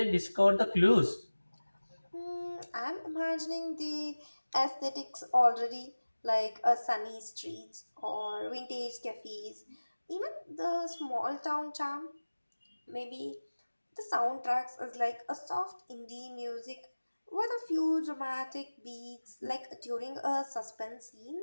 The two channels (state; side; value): inverted; both; correlation -1.00